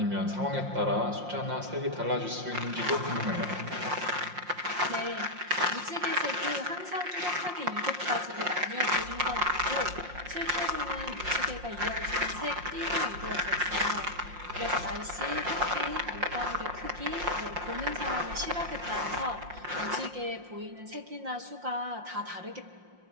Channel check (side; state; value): left; late; 5.6 ms